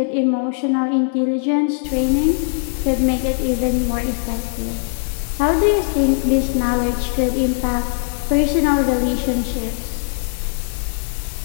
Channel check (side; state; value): right; silent; digital silence